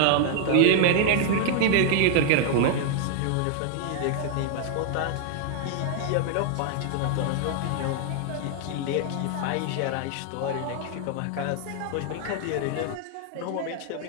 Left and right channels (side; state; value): both; different; correlation 0.00